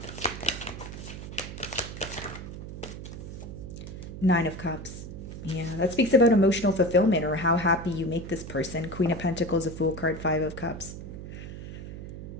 Nine of Cups. Yeah, that speaks about emotional fulfillment or how happy you make this person. Queen of Pentacles, a Fool card, Five of Cups.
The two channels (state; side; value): noise; right; hum, 10 dB below the sound